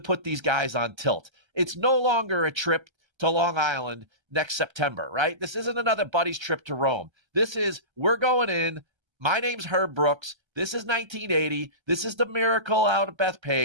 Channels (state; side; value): late; left; 1.3 ms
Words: these guys on tilt. It's no longer a trip to Long Island next September, right? This isn't another buddy's trip to Rome. This is, we're going in. My name's Herb Brooks. This is 1980. This is the miracle out of